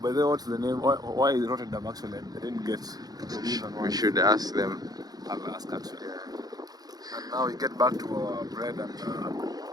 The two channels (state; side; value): late; left; 0.19 ms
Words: By the way, what's the name? Why is Rotterdam actually? I didn't get the reason why. We should ask them. I'll ask actually. And now we get back to our bread and